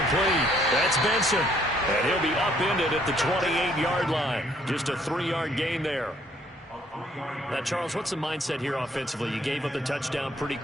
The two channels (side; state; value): both; normal; correlation 0.65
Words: That's Benson. And he'll be upended at the 28-yard line. Just a 3-yard gain there. Now, Charles, what's the mindset here offensively? You gave up the touchdown pretty